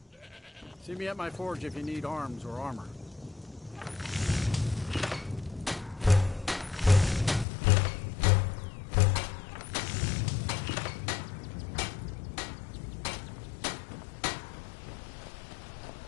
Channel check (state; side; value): drops out; right; at 7.5 s